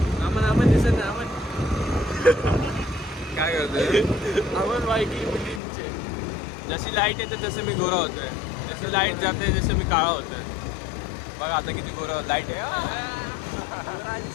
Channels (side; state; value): right; drops out; at 5.6 s